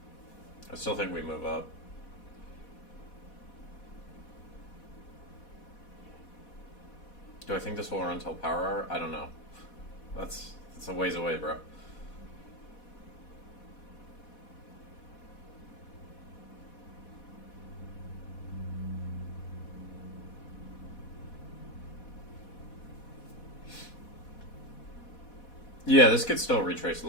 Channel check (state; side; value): late; right; 4.1 ms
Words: I still think we move up. Do I think this will run until power hour? I don't know. That's a ways away, bro. Yeah, this could still retrace